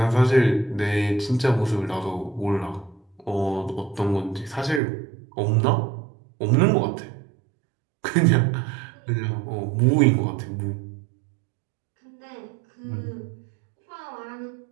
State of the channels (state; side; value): drops out; left; at 4.8 s